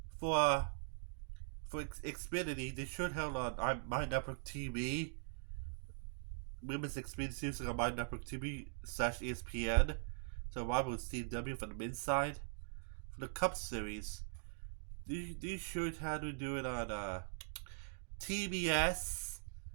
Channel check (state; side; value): silent; left; digital silence